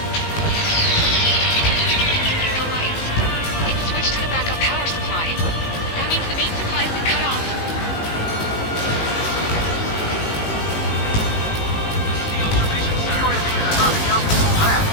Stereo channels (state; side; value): late; right; 19 ms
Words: The lights. It's switched to the backup power supply. That means the main supply's been cut off. UAVs are dropping out fast.